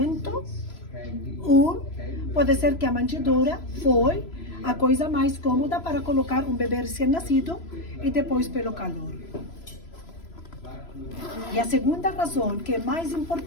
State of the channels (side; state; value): right; late; 3.0 ms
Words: pode ser que a manjedoura foi a coisa mais cômoda para colocar um bebê recém-nascido e depois pelo calor. E a segunda razão, que é mais